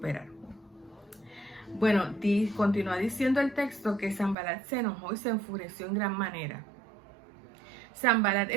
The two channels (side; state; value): left; drops out; at 4.4 s